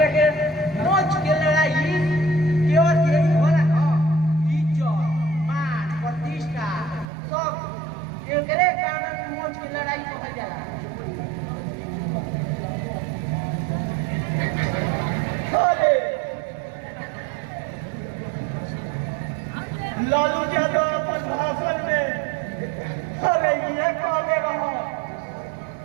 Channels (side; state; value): left; drops out; at 7.1 s